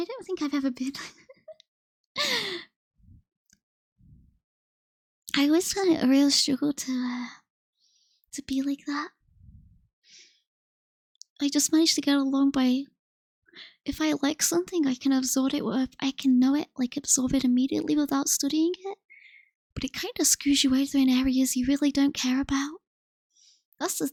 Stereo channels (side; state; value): both; identical; correlation 1.00